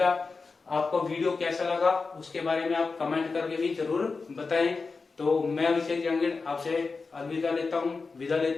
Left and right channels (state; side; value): quieter; right; 4.3 dB